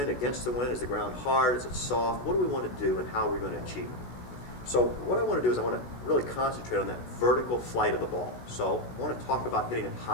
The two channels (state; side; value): late; right; 16 ms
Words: against the wind? Is the ground hard? Is it soft? What do we want to do and how are we going to achieve it? So what I want to do is I want to really concentrate on that vertical flight of the ball. So I want to talk about hitting it